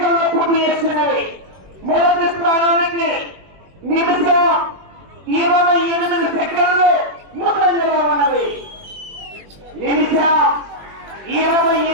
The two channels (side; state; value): left; late; 21 ms